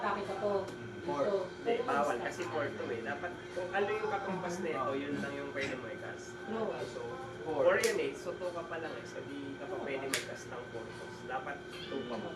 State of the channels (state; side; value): identical; both; correlation 1.00